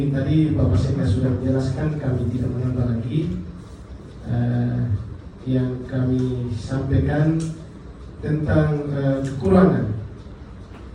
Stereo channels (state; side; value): identical; both; correlation 1.00